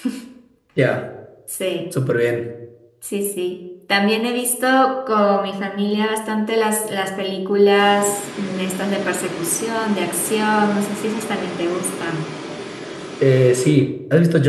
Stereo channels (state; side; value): identical; both; correlation 1.00